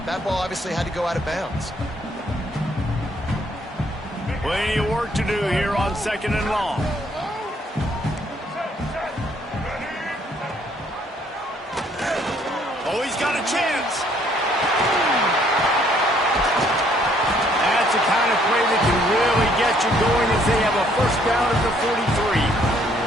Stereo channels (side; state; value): both; normal; correlation 0.65